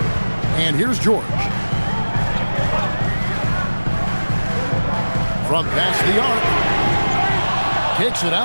And here's George. From past the arc. Kicks it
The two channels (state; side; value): inverted; both; correlation -1.00